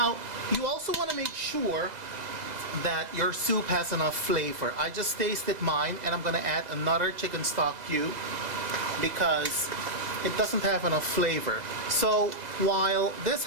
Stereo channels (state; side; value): late; left; 2.0 ms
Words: you also want to make sure that your soup has enough flavor. I just tasted mine, and I'm going to add another chicken stock cube because it doesn't have enough flavor. So while this